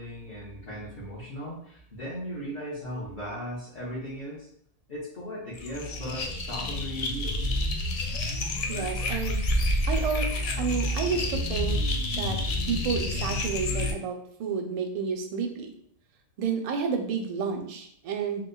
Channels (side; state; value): left; late; 1.7 ms